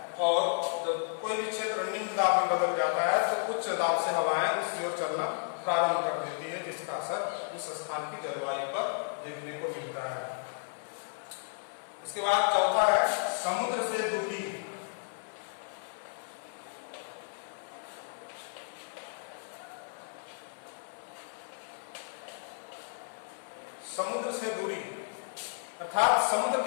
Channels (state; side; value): silent; right; 56 dB below the other